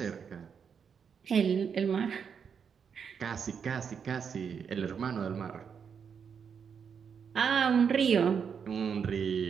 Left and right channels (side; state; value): left; quieter; 6.8 dB